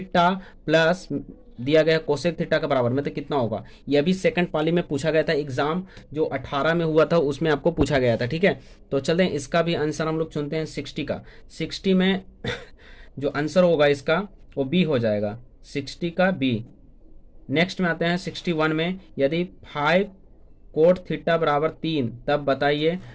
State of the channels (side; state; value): both; identical; correlation 1.00